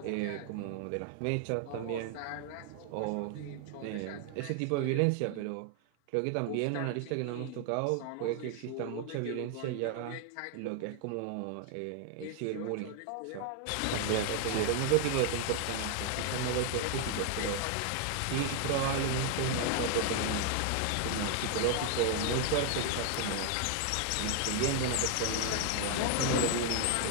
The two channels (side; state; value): both; different; correlation 0.00